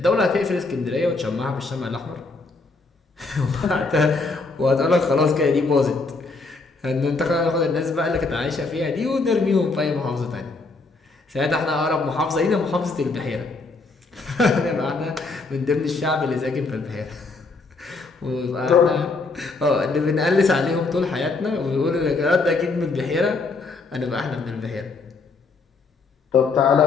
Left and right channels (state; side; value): quieter; right; 3.8 dB